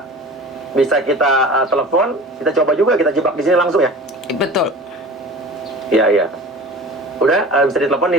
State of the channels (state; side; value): normal; both; correlation 0.38